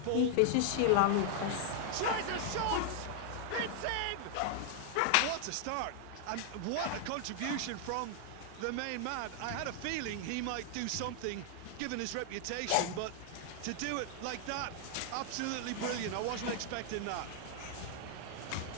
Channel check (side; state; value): both; different; correlation 0.00